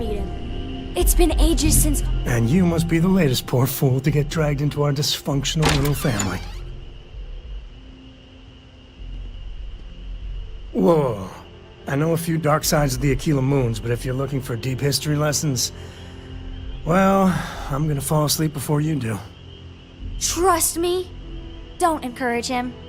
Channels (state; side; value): identical; both; correlation 1.00